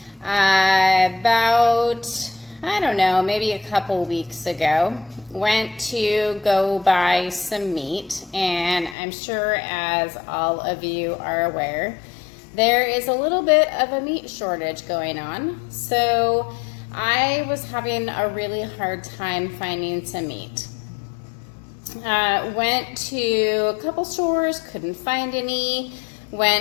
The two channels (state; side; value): drops out; right; at 9.0 s